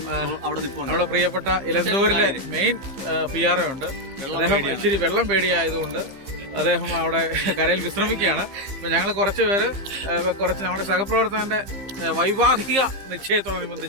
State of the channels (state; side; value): late; left; 15 ms